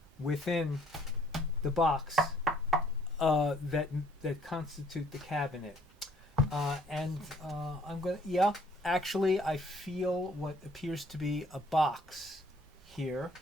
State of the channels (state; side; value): normal; both; correlation 0.61